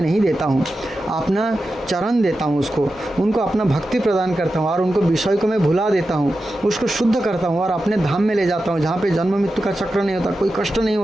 नहीं देता हूँ, अपना चरण देता हूँ, उनको अपना भक्ति प्रदान करता हूँ और उनको विषय को मैं भुला देता हूँ, उसको शुद्ध करता हूँ और अपने धाम में ले जाता हूँ जहाँ पे जन्म मृत्यु का चक्र नहीं होता, कोई कष्ट नहीं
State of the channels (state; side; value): normal; both; correlation 0.91